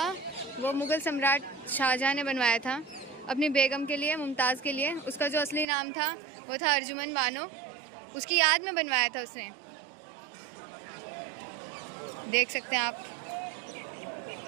वो मुग़ल सम्राट शाहजहाँ ने बनवाया था अपनी बेगम के लिए, मुमताज़ के लिए। उसका जो असली नाम था वो था अर्जुमन बानो। उसकी याद में बनवाया था उसने। देख सकते हैं आप।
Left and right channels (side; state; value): left; drops out; at 5.7 s